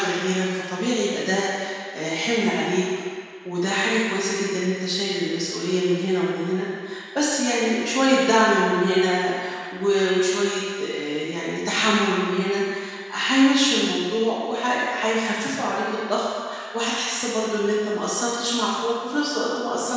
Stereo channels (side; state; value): both; identical; correlation 1.00